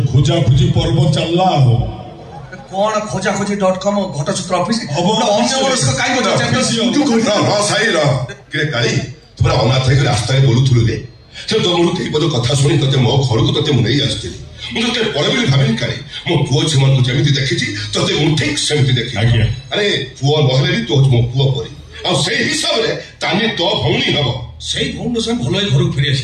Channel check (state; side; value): identical; both; correlation 1.00